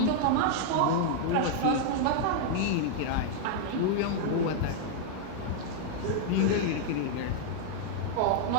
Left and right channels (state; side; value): different; both; correlation -0.01